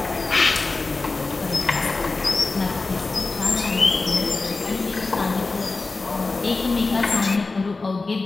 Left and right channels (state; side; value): quieter; right; 3.7 dB